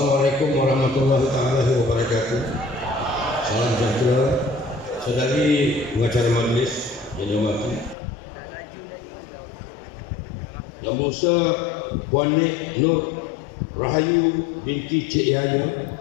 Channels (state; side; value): drops out; right; at 8.0 s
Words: warahmatullahi wabarakatuh. Salam sejahtera. Saudari pengacara majlis yang dihormati, Yang Berhormat Puan Nik Nur Rahayu binti Cik Yahya,